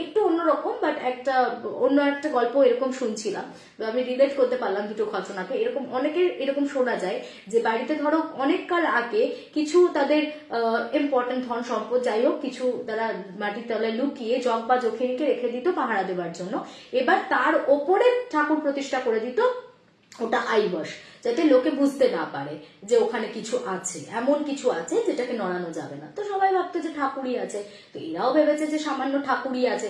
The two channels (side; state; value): both; identical; correlation 1.00